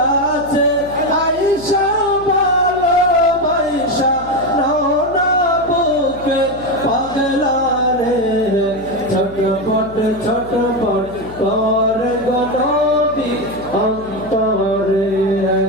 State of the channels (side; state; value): left; noise; hum, 18 dB below the sound